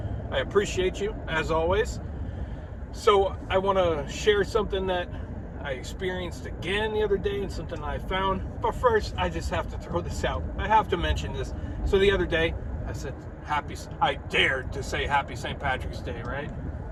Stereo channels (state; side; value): identical; both; correlation 1.00